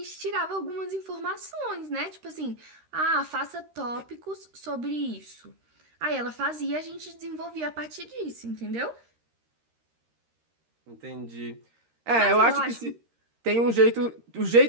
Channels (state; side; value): late; left; 13 ms